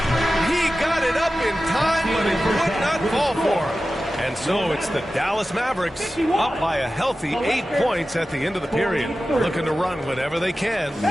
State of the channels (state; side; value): normal; both; correlation 0.94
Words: He got it up in time, but it would not fall for him. And so it's the Dallas Mavericks up by a healthy 8 points at the end of the period. Looking to run whenever they can.